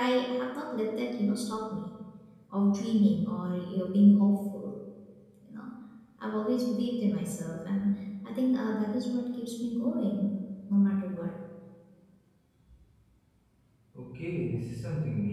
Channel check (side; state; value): both; identical; correlation 1.00